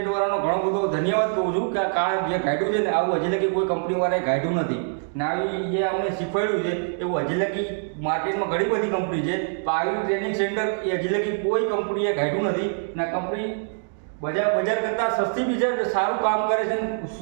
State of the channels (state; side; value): silent; left; digital silence